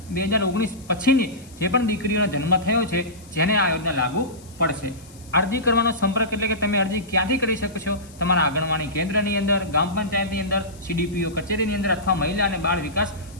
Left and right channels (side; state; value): left; noise; hiss, 24 dB below the sound